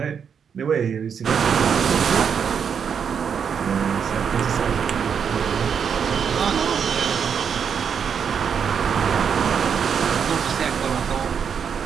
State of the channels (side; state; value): left; quieter; 7.1 dB